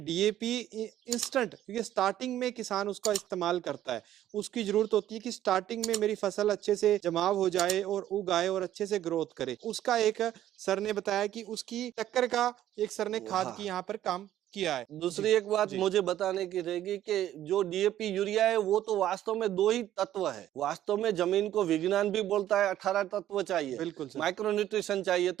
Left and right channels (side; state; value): left; quieter; 12.4 dB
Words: डीएपी इंस्टेंट, क्योंकि स्टार्टिंग में किसान उसका इस्तेमाल करता है, उसकी जरूरत होती है कि स्टार्टिंग में मेरी फसल अच्छे से जमाव हो जाए और उग आए और अच्छे से ग्रोथ करे। उसका एक सर ने बताया कि उसकी टक्कर का एक सर ने खाद की यहाँ पर काम किया है। दूसरी एक बात मुझे बताने की रहेगी कि जो डीएपी यूरिया है वो तो वास्तव में 2 ही तत्व है। वास्तव में जमीन को विज्ञान भी बोलता है 18 तत्व चाहिए, बिल्कुल सर। माइक्रो न्यूट्रिशन चाहिए।